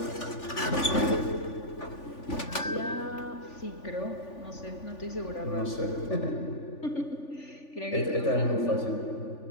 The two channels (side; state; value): right; late; 3.5 ms